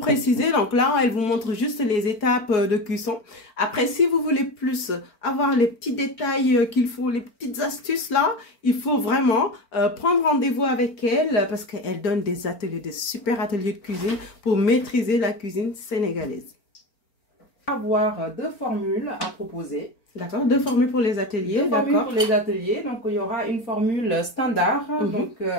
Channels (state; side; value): late; right; 4.4 ms